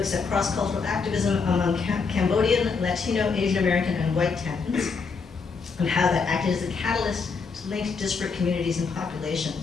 at cross-cultural activism among Cambodian, Latino, Asian American, and white tenants, and how that acted as a catalyst to link disparate communities and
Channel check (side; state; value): right; quieter; 5.0 dB